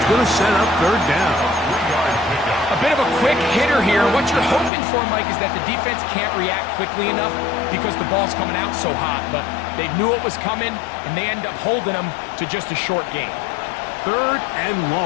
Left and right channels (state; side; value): drops out; right; at 4.7 s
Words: going to set up 3rd down. A bit of a quick hitter here. What you're hoping for, Mike, is that the defense can't react quickly enough because the ball's coming out so hot. But they knew it was coming, and they end up holding them to just a short gain. 3rd and